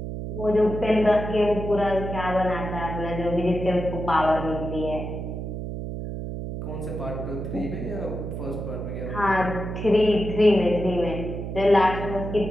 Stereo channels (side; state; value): right; noise; hum, 6 dB below the sound